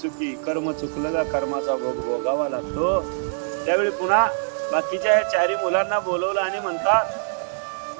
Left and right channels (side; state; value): left; silent; digital silence